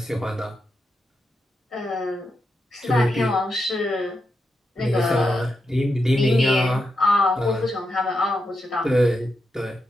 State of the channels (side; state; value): both; normal; correlation 0.85